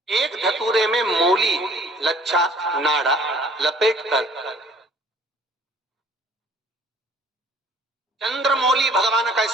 एक धतूरे में मूली, लच्छा, नाड़ा लपेटकर, चंद्रमौली भगवान का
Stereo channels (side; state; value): both; normal; correlation 0.55